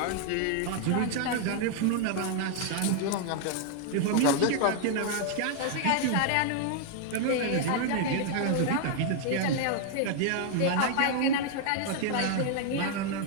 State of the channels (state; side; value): different; both; correlation 0.00